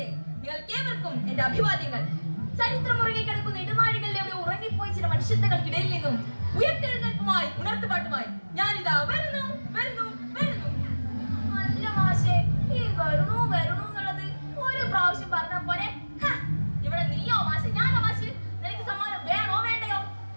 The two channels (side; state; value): both; inverted; correlation -1.00